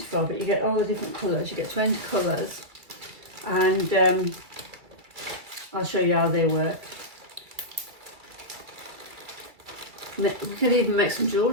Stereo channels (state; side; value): late; left; 2.1 ms